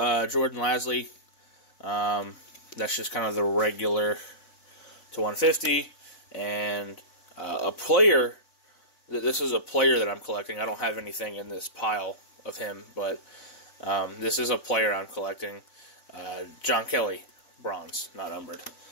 Jordan Lasley. That's just kind of the regular to 150, and a player. This is a player that I'm collecting. I don't have anything in this pile of him, but this is a player I'm collecting. John Kelly, bronze, not numbered.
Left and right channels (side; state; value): right; late; 4.0 ms